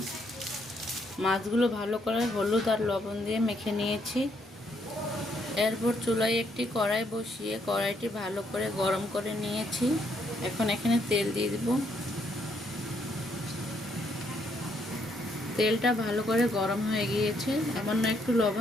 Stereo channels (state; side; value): normal; both; correlation 0.72